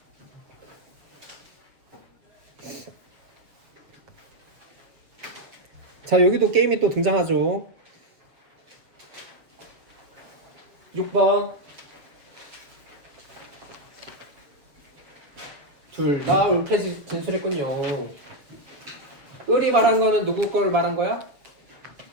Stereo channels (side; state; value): left; late; 6.8 ms